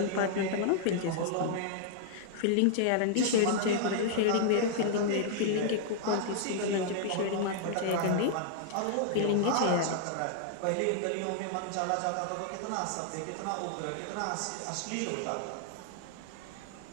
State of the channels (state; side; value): different; both; correlation -0.01